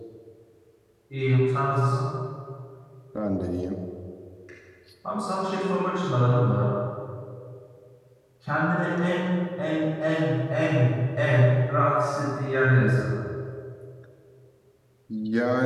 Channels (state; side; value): identical; both; correlation 1.00